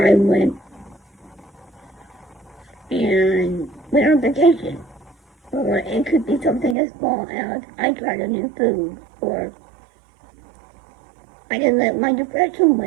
went on vacation. Or it could be something as small as I tried a new food, or I didn't let my depression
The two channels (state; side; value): drops out; left; at 6.8 s